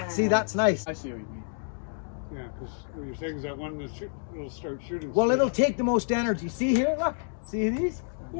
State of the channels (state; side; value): silent; right; digital silence